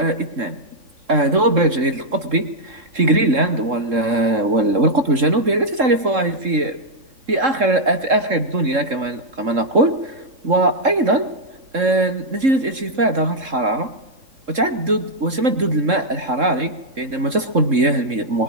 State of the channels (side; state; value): left; late; 3.7 ms